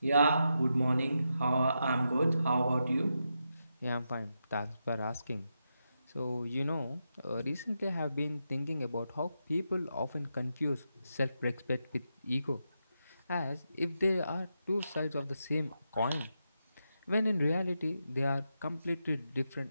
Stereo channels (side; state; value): both; inverted; correlation -0.86